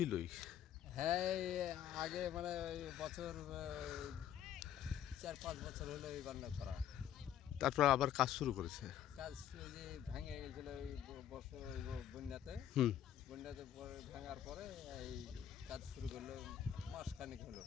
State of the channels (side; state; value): right; quieter; 10.4 dB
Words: হ্যাঁ, এই আগে মানে ওই বছর ৪-৫ বছর হলো এই বান্না করা। তারপর আবার কাজ শুরু করেছে? কাজ ওই যে ভেঙে গেছিল ওই বর্ষা ওই বন্যাতে। হুম। বন্যাতে পরে ভাঙার পরে এই কাজ শুরু করলো, মাসখানেক হলো।